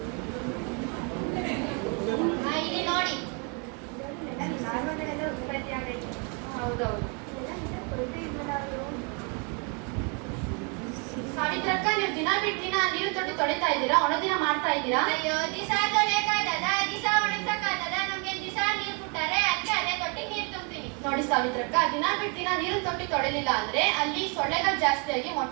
ಇಲ್ಲಿ ನೋಡಿ. ಹೌದೌದು. ಸಾವಿತ್ರಕ್ಕ, ನೀವು ದಿನ ಬಿಟ್ಟು ದಿನ ನೀರು ತೊಟ್ಟಿ ತೊಳಿತಾ ಇದ್ದೀರಾ? ಒಣ ದಿನ ಮಾಡ್ತಾ ಇದ್ದೀರಾ? ಅಯ್ಯೋ ದಿಸ ತೊಳೆಯಕ್ಕಾಗದ, ದಿಸ ಒಣಗ್ಸಕ್ಕಾಗದ. ನಮ್ಗೆ ದಿಸ ನೀರ್ ಬಿಟ್ಟಾರೆ, ಅದಕ್ಕೆ ಅದೇ ತೊಟ್ಟಿ ನೀರ್ ತುಂಬ್ತೀನಿ. ನೋಡಿ ಸಾವಿತ್ರಕ್ಕ, ದಿನ ಬಿಟ್ಟು ದಿನ ನೀರಿನ ತೊಟ್ಟಿ ತೊಳಿಲಿಲ್ಲ ಅಂದ್ರೆ ಅಲ್ಲಿ ಸೊಳ್ಳೆಗಳು ಜಾಸ್ತಿ ಆಗಿ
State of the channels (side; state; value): left; quieter; 35.1 dB